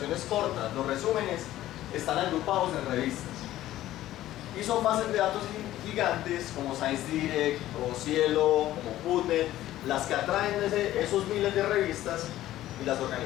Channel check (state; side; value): quieter; right; 14.2 dB